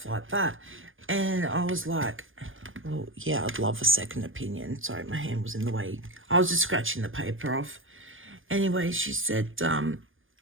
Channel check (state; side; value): late; left; 0.58 ms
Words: like that? And I was like, well, yeah, I'd love a second opinion. Sorry, my hand was in the way. I was just scratching the paper off. Anyway, she said,